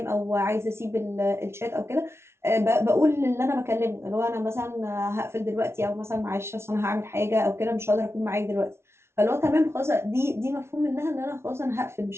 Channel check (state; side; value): late; left; 0.12 ms